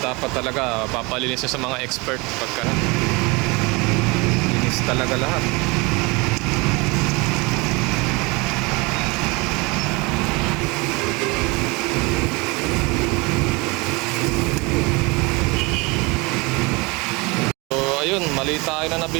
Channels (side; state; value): left; quieter; 26.4 dB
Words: talaga papalinis sa mga expert pagka linis talaga lahat. Ayun, mali tayo na